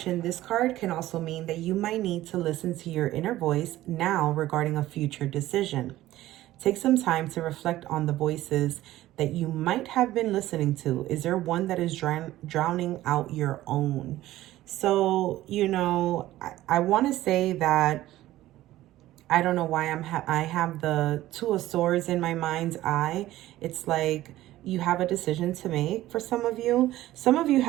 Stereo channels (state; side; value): quieter; left; 15.2 dB